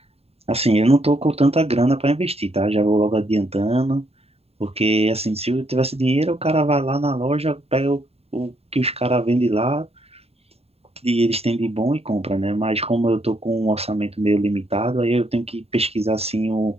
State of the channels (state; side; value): late; left; 0.29 ms